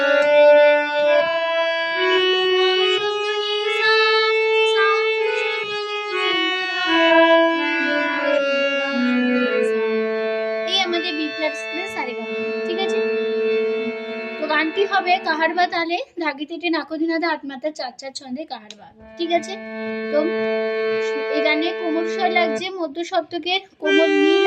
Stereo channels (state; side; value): identical; both; correlation 1.00